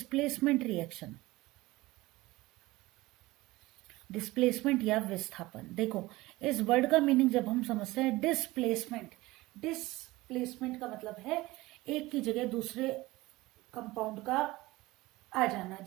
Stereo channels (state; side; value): quieter; left; 19.7 dB